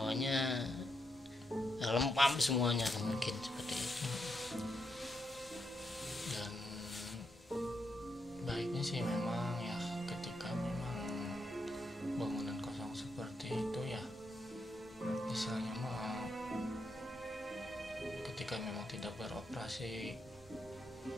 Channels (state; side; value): normal; both; correlation 0.81